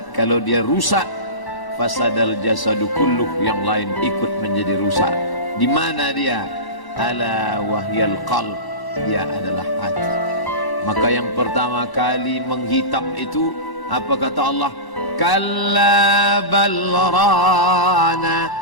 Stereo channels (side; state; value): right; late; 1.0 ms